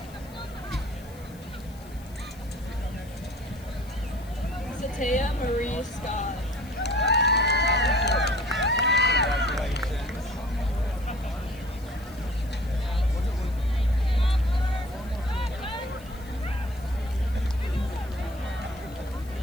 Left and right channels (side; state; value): left; noise; hiss, 24 dB below the sound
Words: Satea Marie Scott.